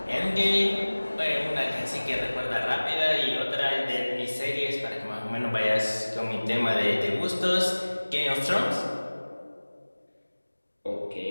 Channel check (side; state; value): both; inverted; correlation -1.00